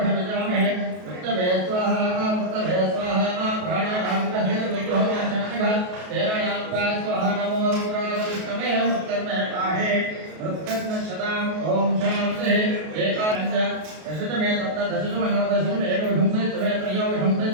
ओम शांति एकादश दशमे सप्त दशमे नव दशमे एकविंशे त्वे त्रयोविंशे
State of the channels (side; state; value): left; late; 33 ms